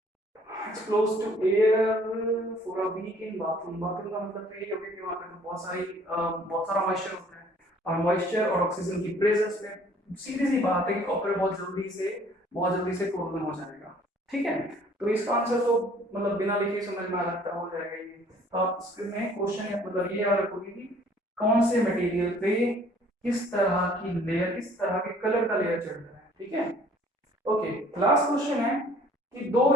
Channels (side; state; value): both; normal; correlation 0.56